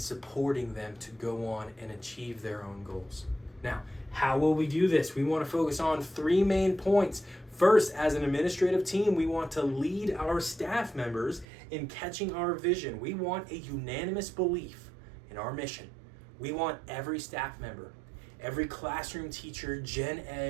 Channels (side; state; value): left; drops out; at 11.5 s